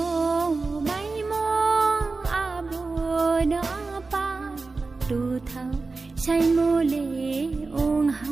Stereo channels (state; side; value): quieter; left; 3.9 dB